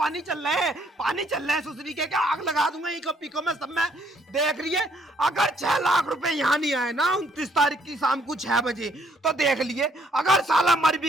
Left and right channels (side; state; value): both; normal; correlation 0.67